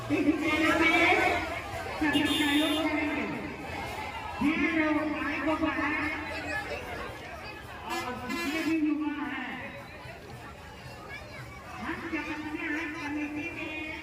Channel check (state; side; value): identical; both; correlation 1.00